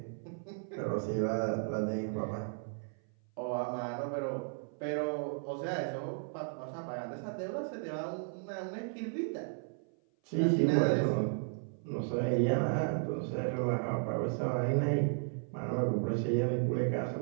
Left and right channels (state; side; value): silent; left; 55 dB below the other